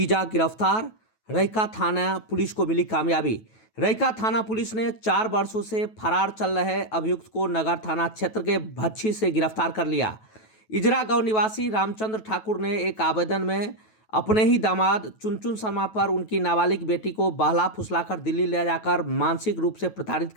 गिरफ्तार। रैका थाना पुलिस को मिली कामयाबी। रैका थाना पुलिस ने 4 वर्षों से फरार चल रहे अभियुक्त को नगर थाना क्षेत्र के भच्छी से गिरफ्तार कर लिया। इजरा गांव निवासी रामचंद्र ठाकुर ने एक आवेदन में अपने ही दामाद चुनचुन शर्मा पर उनकी नाबालिग बेटी को बहला फुसलाकर दिल्ली ले जाकर मानसिक रूप से प्रताड़ित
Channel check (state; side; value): late; right; 9.2 ms